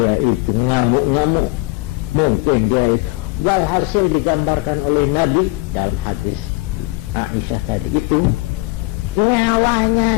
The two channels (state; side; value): quieter; right; 22.1 dB